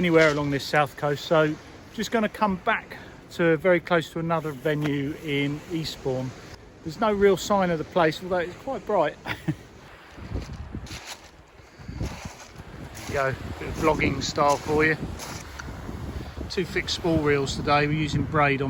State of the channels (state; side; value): identical; both; correlation 1.00